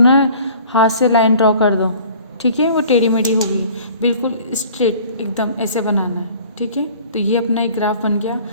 हाथ से लाइन ड्रॉ कर दो, ठीक है, वो टेढ़ी मेढ़ी होगी, बिल्कुल स्ट्रेट एकदम ऐसे बनाना है, ठीक है। तो ये अपना एक ग्राफ बन गया।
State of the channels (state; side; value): inverted; both; correlation -0.49